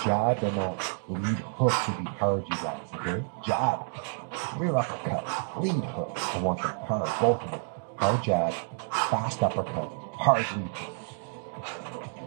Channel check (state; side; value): silent; left; 58 dB below the other